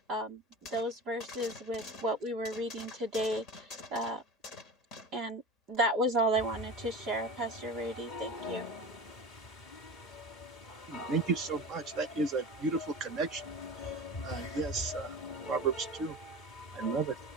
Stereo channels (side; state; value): both; normal; correlation 0.32